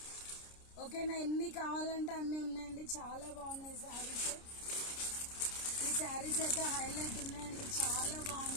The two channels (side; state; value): right; late; 29 ms